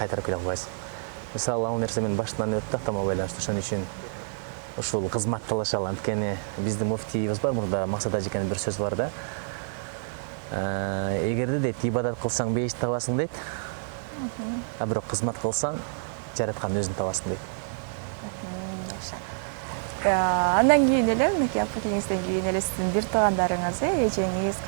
келе албайсың. Мисалы, ал нерсе менин башымдан өттү атама байланыштуу. Ошон үчүн ушул кызмат талашалы. Анткени биздин муфтийибиз бар, мурда Максат ажекенин бир сөзү бар да. Эгерде дейт, ибадат кылсаң бейиш табасың дейт. Бирок кызмат кылсаң, жараткан өзүн табасың дейт. Андан кийин эле, мынакей апакеңизден кийин эле сиздин бир туугандарыңыз, эжеңиз,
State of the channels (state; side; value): silent; left; 60 dB below the other